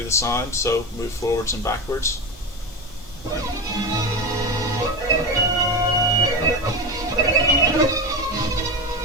the sound, so move forwards and backwards.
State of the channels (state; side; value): normal; both; correlation 0.19